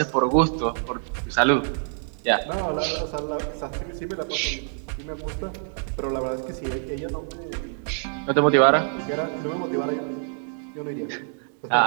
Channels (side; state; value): left; silent; 61 dB below the other